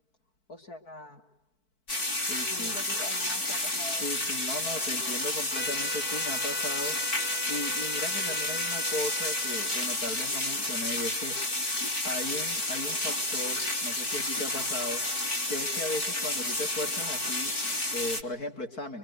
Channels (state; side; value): late; right; 4.6 ms